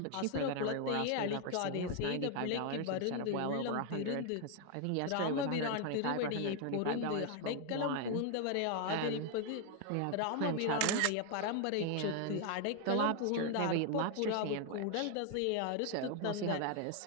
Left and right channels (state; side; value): different; both; correlation 0.01